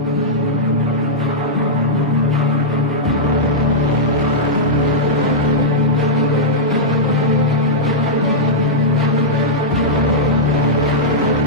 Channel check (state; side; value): normal; both; correlation -0.09